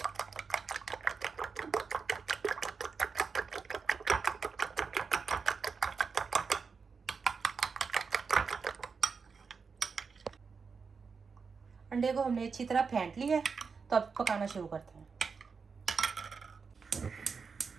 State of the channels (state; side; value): quieter; left; 5.3 dB